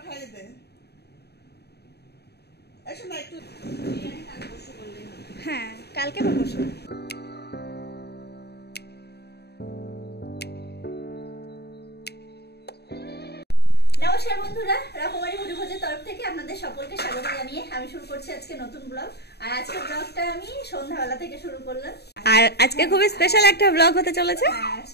খাইয়ে দে। এসো না একটু বিরিয়ানি কাল পরশু করলেই হবে। হ্যাঁ কালকে বা পরশু। নমস্কার বন্ধুরা, রকমারি মুড়িভোজের তরফ থেকে আপনাদের সকলকে স্বাগত জানিয়ে আমি শুরু করছি আজকে নতুন ব্লগ। আর আজকের ব্লগটা আমি সন্ধ্যাবেলা থেকে শুরু করলাম। আর আজকে খুবই স্পেশাল একটা ব্লগ হতে চলেছে। হ্যাঁ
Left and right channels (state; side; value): late; right; 0.48 ms